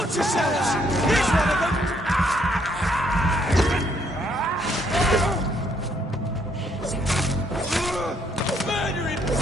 yourselves! Here's one of them! Murdering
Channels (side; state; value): both; normal; correlation 0.69